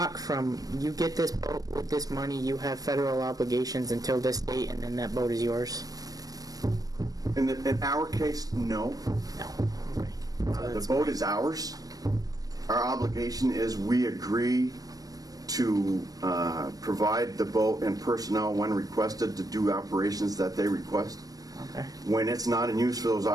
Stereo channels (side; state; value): left; late; 0.18 ms